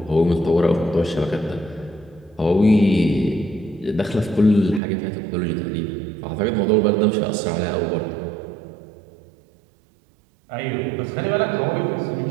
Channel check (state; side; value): drops out; left; at 4.8 s